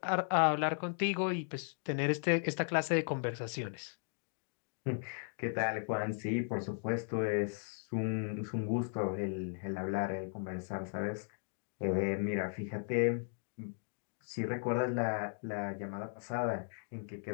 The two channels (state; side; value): silent; right; digital silence